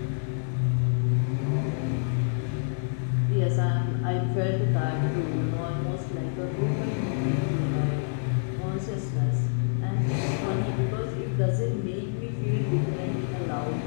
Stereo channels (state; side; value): silent; right; 60 dB below the other